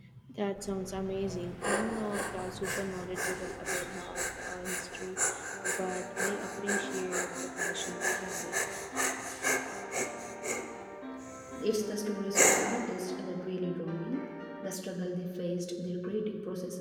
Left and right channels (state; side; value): identical; both; correlation 1.00